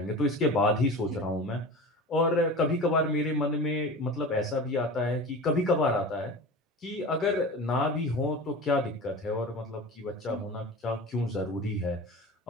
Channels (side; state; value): both; normal; correlation 0.33